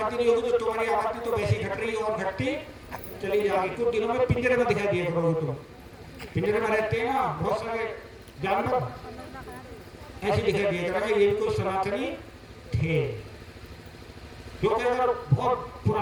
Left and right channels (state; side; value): identical; both; correlation 1.00